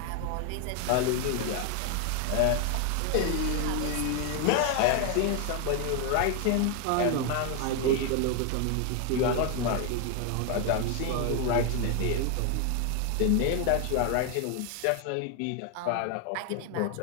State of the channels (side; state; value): both; different; correlation 0.01